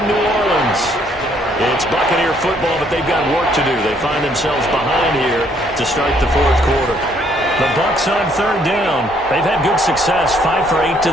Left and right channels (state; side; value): normal; both; correlation 0.67